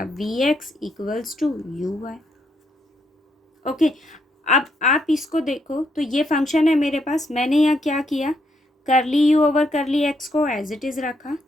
v x equals to u y. Okay, अब आप इसको देखो तो ये फंक्शन है मेरे पास, मैंने यहाँ क्या किया, curly u over curly x को एज इट इज़ रखा,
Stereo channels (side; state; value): both; normal; correlation 0.76